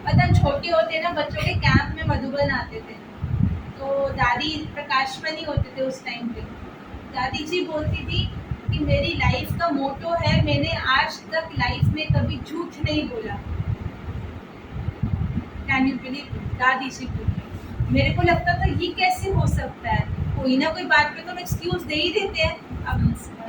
पता, छोटे होते ना, बच्चों के कैंप में मधुबन आते थे, तो दादी प्रकाशमणि होते थे उस टाइम पे, दादी जी बोलती थी कि मेरी लाइफ का मोटो है, मैंने आज तक लाइफ में कभी झूठ नहीं बोला। कैन यू बिलीव, दादी जी बोली। मेरे को लगता था ये कैसे हो सकता है, कोई ना कोई बात पे तो हम एक्सक्यूज दे ही देते हैं। अब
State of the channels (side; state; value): both; identical; correlation 1.00